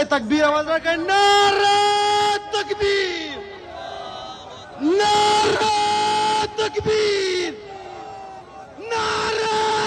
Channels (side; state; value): both; identical; correlation 1.00